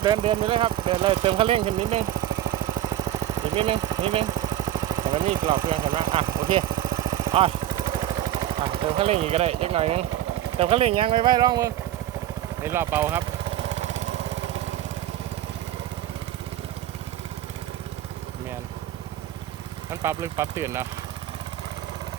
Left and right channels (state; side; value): quieter; left; 12.2 dB